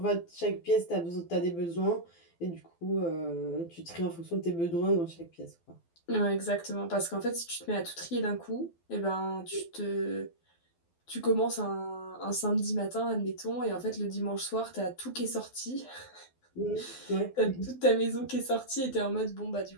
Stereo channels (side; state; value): right; late; 12 ms